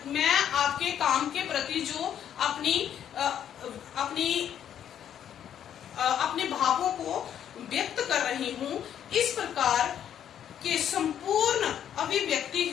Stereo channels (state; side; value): quieter; right; 9.7 dB